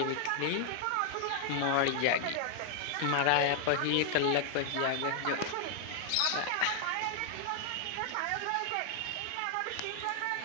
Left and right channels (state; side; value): different; both; correlation 0.00